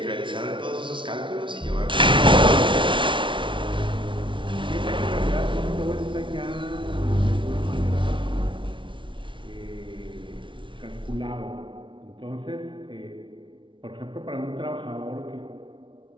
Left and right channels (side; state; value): left; late; 0.24 ms